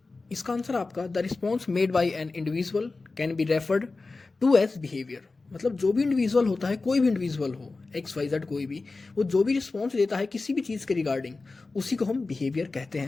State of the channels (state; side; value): quieter; right; 3.7 dB